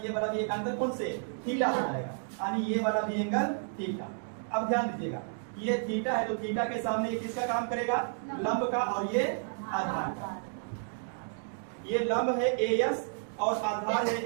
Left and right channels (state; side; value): silent; left; digital silence